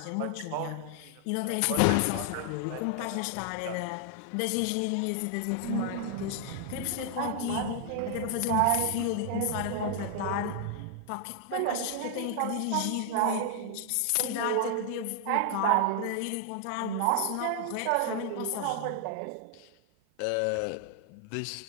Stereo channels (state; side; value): different; both; correlation 0.00